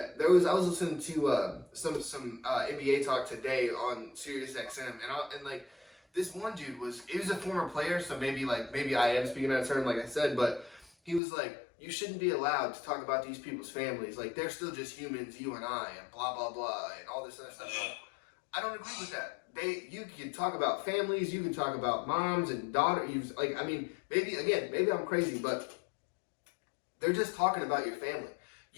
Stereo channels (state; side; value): drops out; right; at 11.2 s